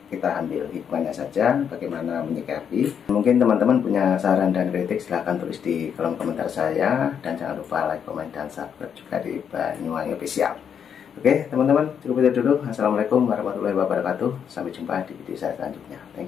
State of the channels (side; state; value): right; quieter; 7.8 dB